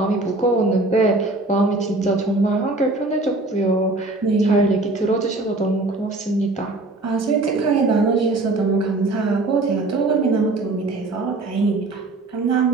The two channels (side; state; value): left; quieter; 3.0 dB